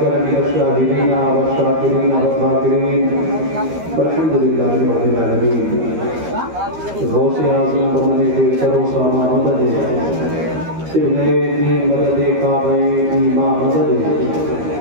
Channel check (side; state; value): left; late; 13 ms